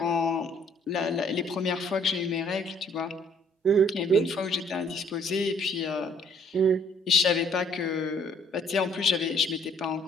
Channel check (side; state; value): both; normal; correlation 0.62